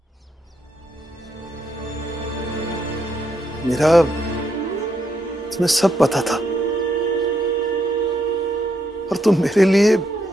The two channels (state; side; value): normal; both; correlation 0.78